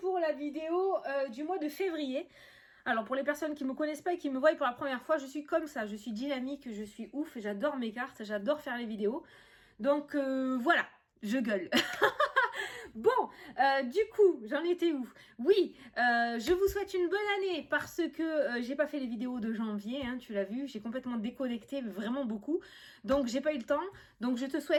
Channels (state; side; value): identical; both; correlation 1.00